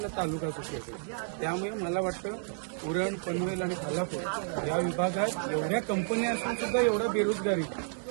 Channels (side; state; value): left; silent; digital silence